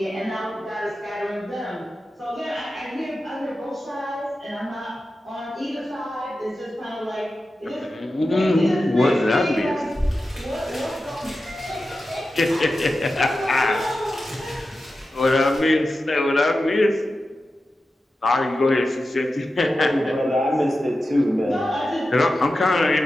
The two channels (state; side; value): normal; both; correlation 0.92